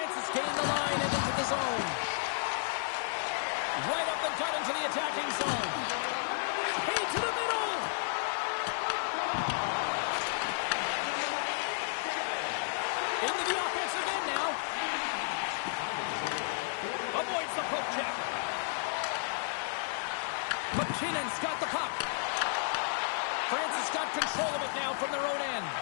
has gained the line and into the zone. Right up the gut into the attacking zone. Hey, to the middle! Into the offensive end now. Avoids the poke check. McKinnon's got the puck. France has got control of it now from their own end.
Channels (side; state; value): right; silent; digital silence